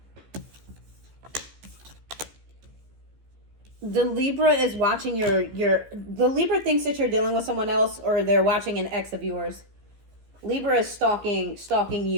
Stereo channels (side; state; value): left; late; 15 ms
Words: The Libra is watching the Libra thinks that you're dealing with someone else, or they're watching an ex of yours. Libra is stalking